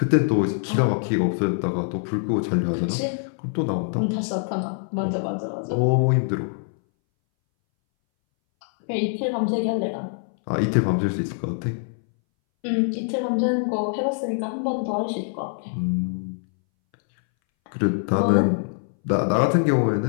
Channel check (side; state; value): right; silent; 61 dB below the other